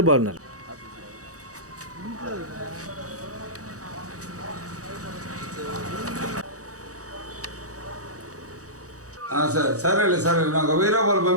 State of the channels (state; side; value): late; left; 0.66 ms